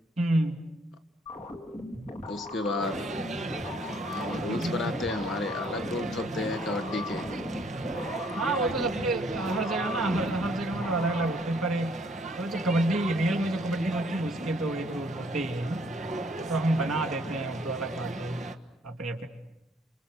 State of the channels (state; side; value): normal; both; correlation 0.64